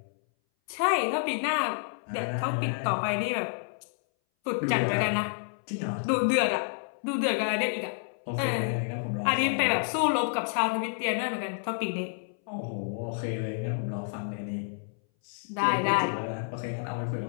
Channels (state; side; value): silent; right; 58 dB below the other